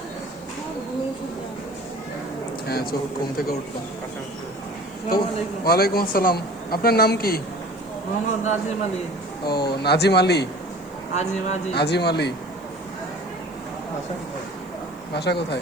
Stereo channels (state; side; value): noise; left; hiss, 27 dB below the sound